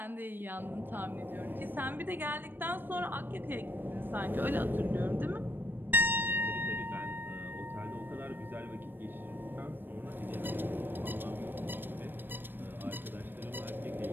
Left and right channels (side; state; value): left; late; 0.094 ms